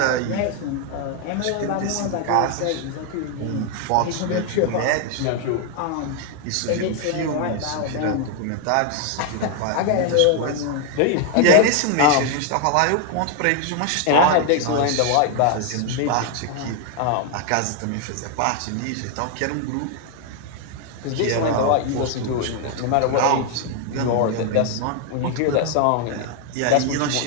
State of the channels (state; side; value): different; both; correlation 0.00